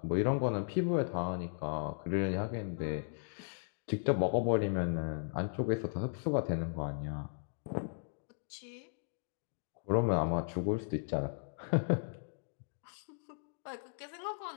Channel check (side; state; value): right; silent; digital silence